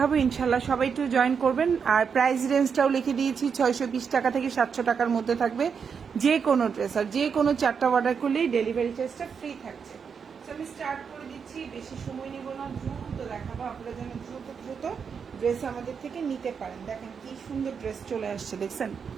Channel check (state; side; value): quieter; left; 6.4 dB